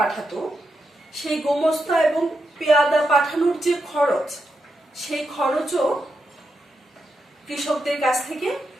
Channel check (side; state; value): both; normal; correlation 0.85